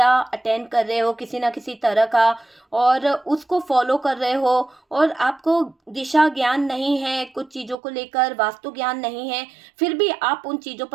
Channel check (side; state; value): left; drops out; at 7.8 s